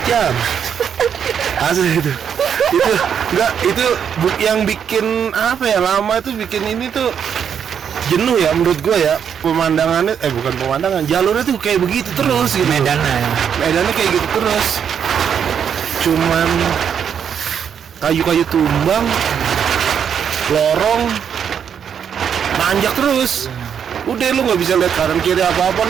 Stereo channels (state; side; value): quieter; left; 7.9 dB